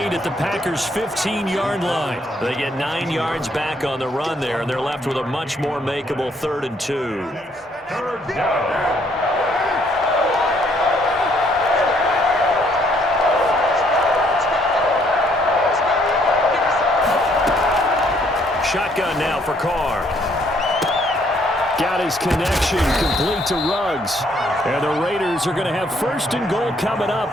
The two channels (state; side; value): normal; both; correlation 0.67